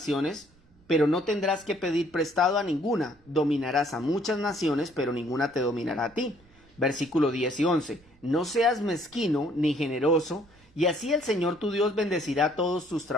pero no tendrás que pedir prestado a ninguna. Dominarás a muchas naciones, pero ninguna te dominará a ti. Versículo 10 y 11. No seas mezquino ni generoso, y así el Señor tu Dios bendecirá todos tus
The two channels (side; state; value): right; noise; rumble, 29 dB below the sound